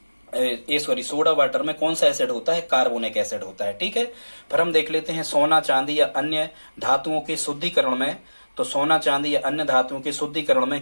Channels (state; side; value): inverted; both; correlation -1.00